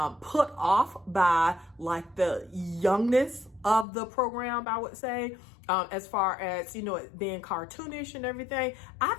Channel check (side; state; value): right; drops out; at 3.9 s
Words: put off by like the youngness of the program, I would say, as far as, you know, it being cartoonish and everything, I